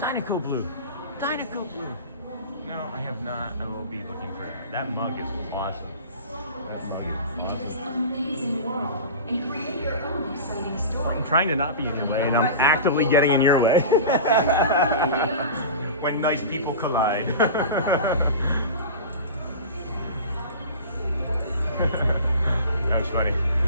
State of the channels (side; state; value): both; inverted; correlation -0.33